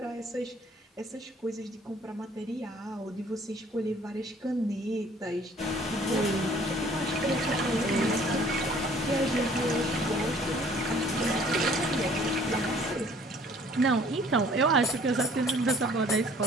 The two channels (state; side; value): normal; both; correlation 0.55